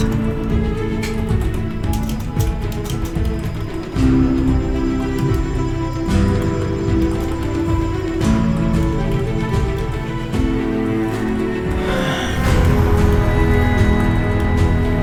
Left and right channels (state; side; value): identical; both; correlation 1.00